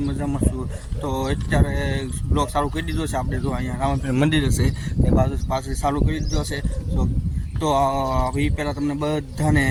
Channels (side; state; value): both; identical; correlation 1.00